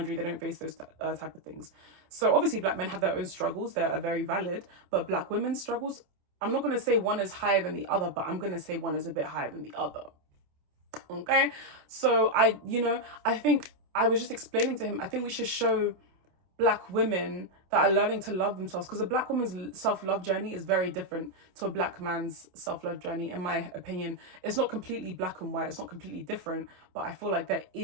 they don't face those type of things. So obviously black men have their own struggles. They are very valid. But black women's struggles, I'm not going to say one is higher than the other, but I'm going to say one is a bit higher than the other. Okay? So I think I was just explaining to him, I think we should show black women that are learning to love themselves, because a black woman's self-love journey is very different to a black man's self-love journey. In my opinion, it's not completely black and white, it's not completely different, but I feel like there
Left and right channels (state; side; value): late; left; 27 ms